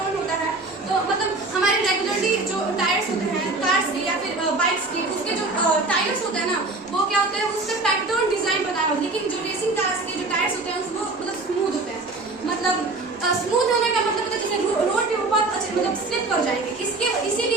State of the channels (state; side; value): quieter; left; 3.3 dB